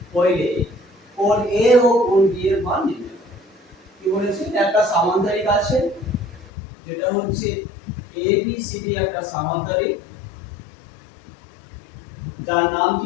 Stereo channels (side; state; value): right; drops out; at 6.5 s